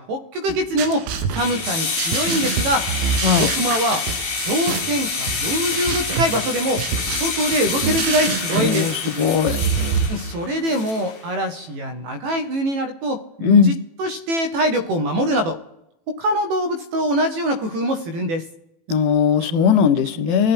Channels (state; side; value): late; left; 18 ms